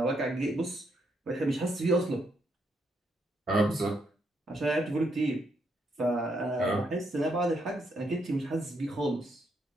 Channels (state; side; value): normal; both; correlation 0.76